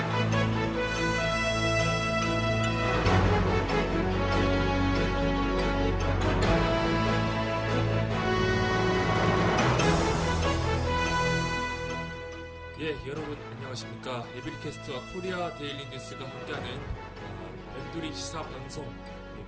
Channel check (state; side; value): identical; both; correlation 1.00